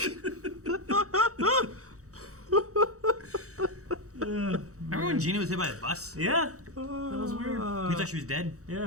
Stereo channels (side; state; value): left; late; 0.65 ms